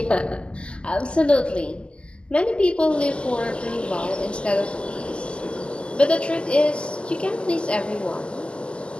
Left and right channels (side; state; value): right; late; 0.052 ms